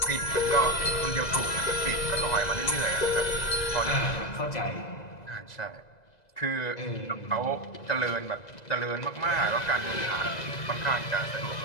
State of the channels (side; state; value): right; late; 2.0 ms